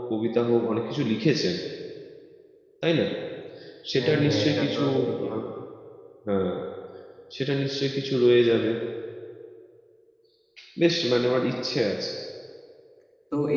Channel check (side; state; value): both; identical; correlation 1.00